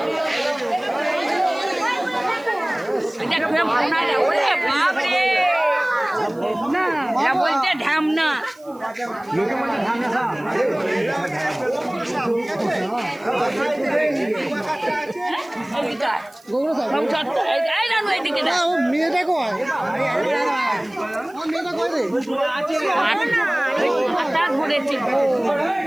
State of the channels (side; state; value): right; noise; hiss, 28 dB below the sound